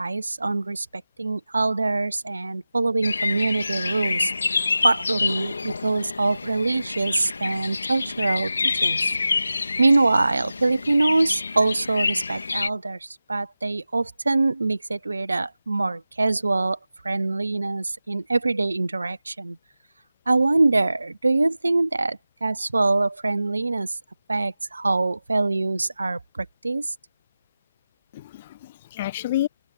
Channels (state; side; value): inverted; both; correlation -0.95